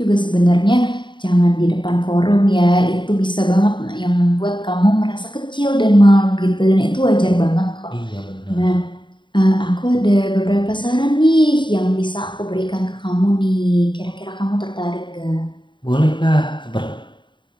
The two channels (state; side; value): late; right; 0.23 ms